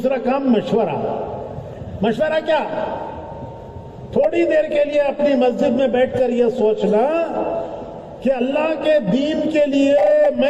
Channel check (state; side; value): identical; both; correlation 1.00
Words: کام مشورہ. مشورہ کیا؟ تھوڑی دیر کے لیے اپنی مسجد میں بیٹھ کر یہ سوچنا کہ اللہ کے دین کے لیے